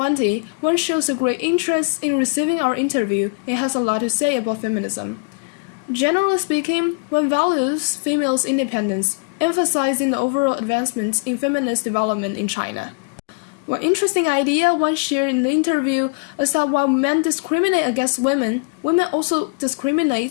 Huang shows a great interest in receiving our interview and has a lot to say about feminism. Generally speaking, one values females' independence, emphasizing the overall advancements in feminist development in China. One interesting idea one shared in the interview is that while men discriminate against women, women also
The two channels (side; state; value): right; quieter; 34.3 dB